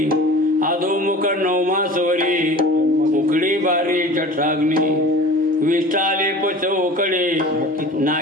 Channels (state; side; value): normal; both; correlation 0.40